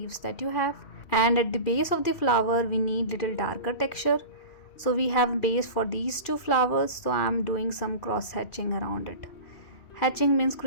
that you have. And at the base of the flower we need little darker texture. So we have base for these two flowers, so I'm doing some cross hatching around it. Hatching means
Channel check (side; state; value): right; late; 2.4 ms